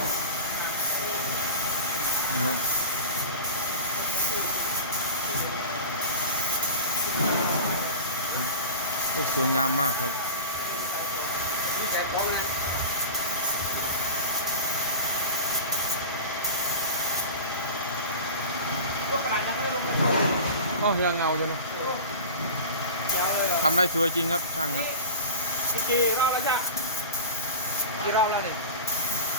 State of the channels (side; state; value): both; inverted; correlation -0.35